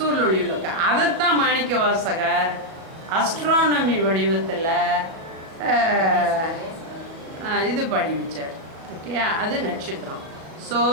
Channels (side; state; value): left; late; 37 ms